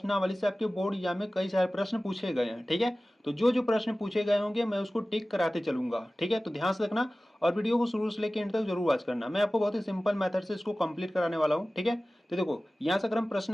से आपके बोर्ड एग्जाम में कई सारे प्रश्न पूछे गए हैं। ठीक है, तो जो जो प्रश्न पूछे गए होंगे मैं उसको टिक कराते चलूंगा। ठीक है, तो ध्यान से रखना और वीडियो को शुरू से लेकर एंड तक जरूर वॉच करना। मैं आपको बहुत ही सिंपल मेथड से इसको कंप्लीट कराने वाला हूँ। ठीक है, तो देखो यहाँ से अगर हम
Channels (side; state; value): both; normal; correlation 0.97